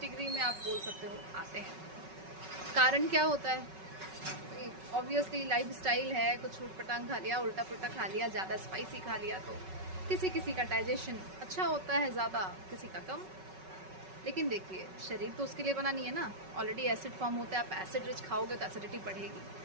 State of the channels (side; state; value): left; late; 5.3 ms